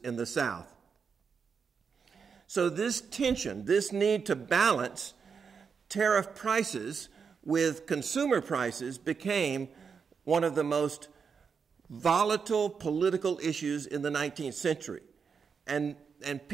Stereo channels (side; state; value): left; quieter; 6.0 dB